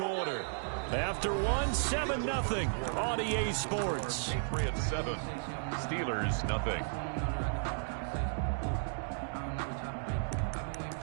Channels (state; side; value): silent; left; digital silence